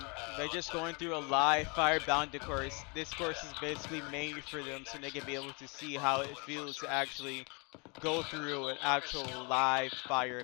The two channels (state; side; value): quieter; right; 31.5 dB